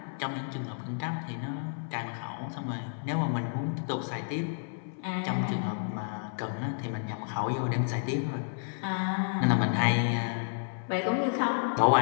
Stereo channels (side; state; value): right; silent; 57 dB below the other